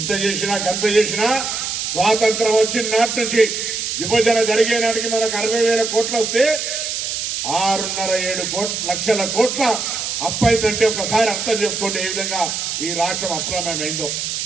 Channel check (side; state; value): right; noise; hiss, 3 dB below the sound